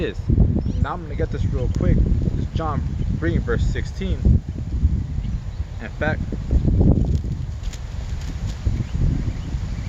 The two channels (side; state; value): both; identical; correlation 1.00